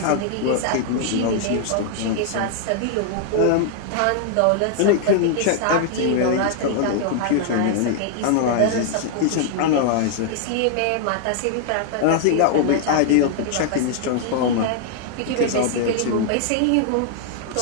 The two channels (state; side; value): different; both; correlation -0.01